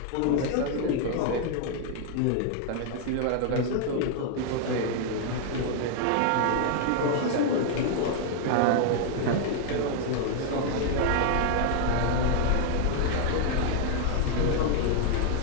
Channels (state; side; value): different; both; correlation 0.00